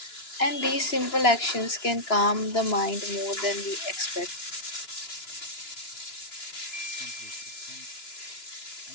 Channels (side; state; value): right; late; 2.9 ms